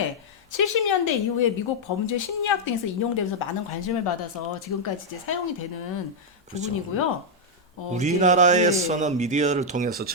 70년대 이후에 미국 범죄 심리학 등에서 인용되면서 많은 관심을 받아서 지금까지 이제 사용이 되는 부분이고요. 우리나라에서는 미디어를 통해서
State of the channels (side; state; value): both; normal; correlation -0.03